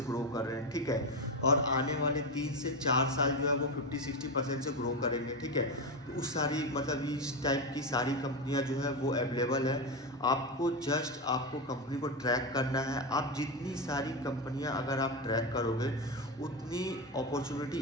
ग्रो कर रहे हैं, ठीक है। और आने वाले 3 से 4 साल जो है वो 50-60% से ग्रो करेंगे, ठीक है। तो उस सारी मतलब इस टाइप की सारी कंपनियां जो है वो अवेलेबल है। आपको कंपनी को ट्रैक करना है। आप जितनी सारी कंपनियां अगर आप ट्रैक करोगे उतनी अपॉर्चुनिटी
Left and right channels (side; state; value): both; normal; correlation 0.14